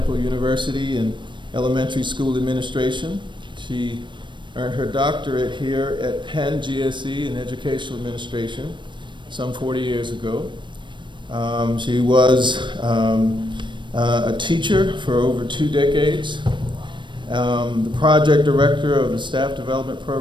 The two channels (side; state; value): left; late; 0.23 ms